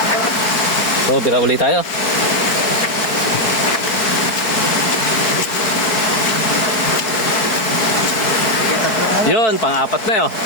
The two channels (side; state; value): right; late; 4.6 ms